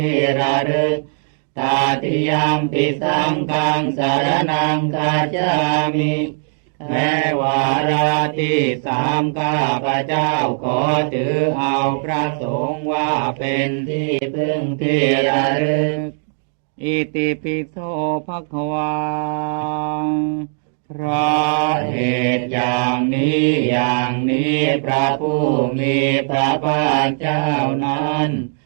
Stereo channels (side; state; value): left; silent; digital silence